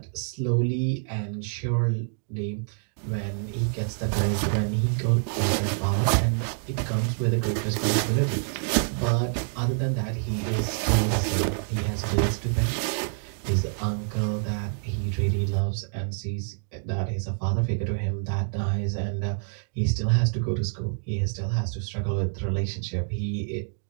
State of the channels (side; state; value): left; silent; 60 dB below the other